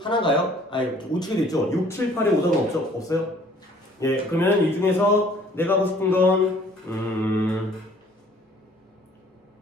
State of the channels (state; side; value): normal; both; correlation 0.56